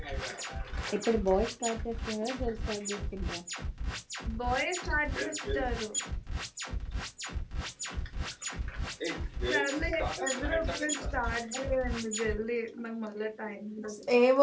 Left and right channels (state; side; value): identical; both; correlation 1.00